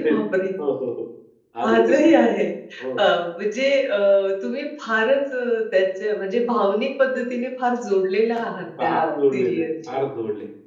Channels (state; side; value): identical; both; correlation 1.00